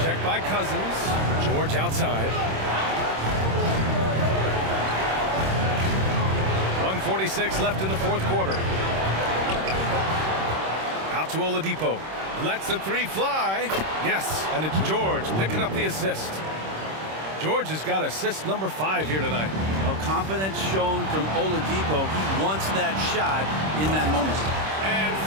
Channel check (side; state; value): left; late; 26 ms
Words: Checked by Cousins. George outside. 1:46 left in the 4th quarter. Out to Oladipo. Lets the 3 fly. Yes, and it's George picking up the assist. George has got assist number 5 here tonight. Well, confidence shown from Oladipo. He wants that shot in that moment. And